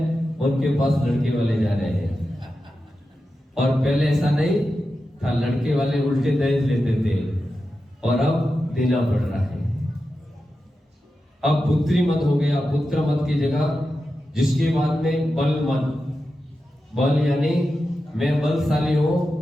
उनके पास लड़के वाले जा रहे हैं, और पहले ऐसा नहीं था, लड़के वाले उल्टे दहेज लेते थे, और अब देना पड़ रहा है। अब पुत्री मत हो गया, पुत्र मत की जगह। जिसके बाद में बल मत, बल यानी मैं बलशाली हूं,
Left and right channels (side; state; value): both; normal; correlation 0.91